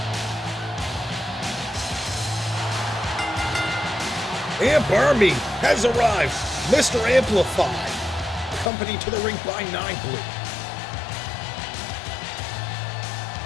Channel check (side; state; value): right; drops out; at 8.7 s